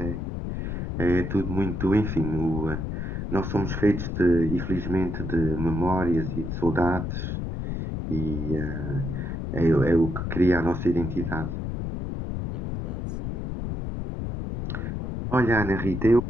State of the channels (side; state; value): left; noise; rumble, 4 dB below the sound